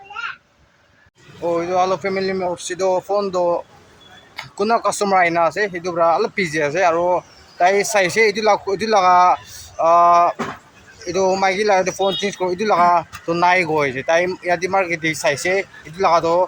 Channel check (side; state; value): both; identical; correlation 1.00